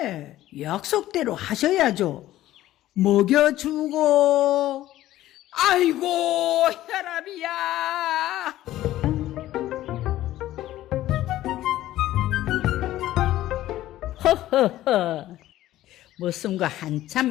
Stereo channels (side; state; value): right; quieter; 14.5 dB